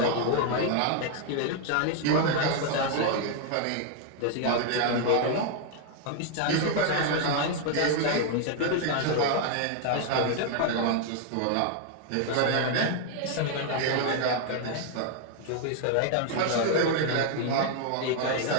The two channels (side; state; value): both; different; correlation 0.00